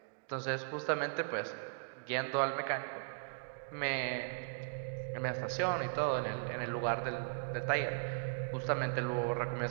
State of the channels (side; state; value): left; silent; digital silence